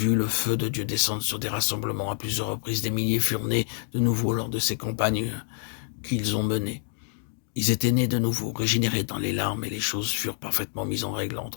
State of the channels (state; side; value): silent; right; digital silence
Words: le feu de Dieu descendre sur des rassemblements à plusieurs reprises. Des milliers furent nés de nouveau lors de ces campagnes qu'ils ont menées. Ils étaient nés de nouveau, régénérés dans les larmes, et les choses furent parfaitement mises en règle